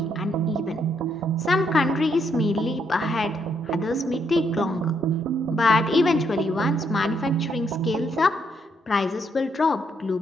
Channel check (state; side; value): normal; both; correlation 0.75